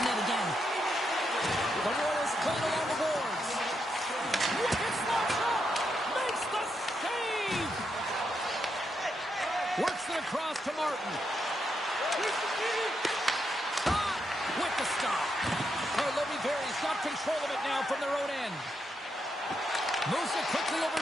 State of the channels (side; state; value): both; normal; correlation 0.82